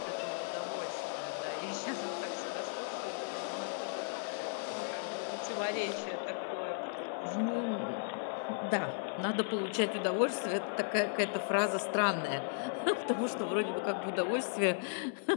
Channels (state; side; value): silent; right; 54 dB below the other